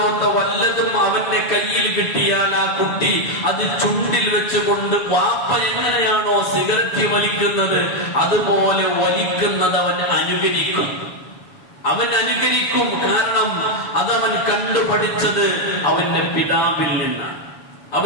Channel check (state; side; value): late; right; 7.1 ms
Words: വല്ലതും അവന്റെ കയ്യിൽ കിട്ടിയാൽ ആ കുട്ടി അത് ചുണ്ടിൽ വെച്ചുകൊണ്ട് വാപ്പ എങ്ങനെയാണോ സിഗരറ്റ് വലിക്കുന്നത് അതുപോലെ വലിക്കുന്നത് അവൻ അനുകരിക്കും. കാരണം അതവൻ കണ്ടുപഠിച്ചത് അവന്റെ പിതാവിൽ